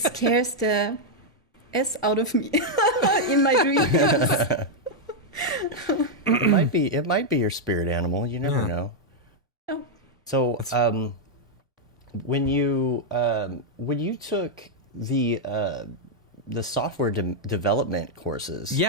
the S out of me in my dreams. It might be your spirit animal. You never know. Oh. So, when you took the software development courses,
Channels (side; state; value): both; normal; correlation -0.02